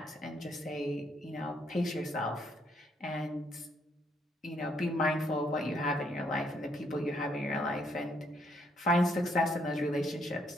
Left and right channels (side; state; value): both; normal; correlation 0.71